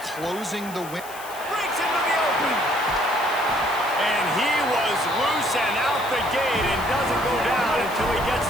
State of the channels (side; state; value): left; noise; hiss, 16 dB below the sound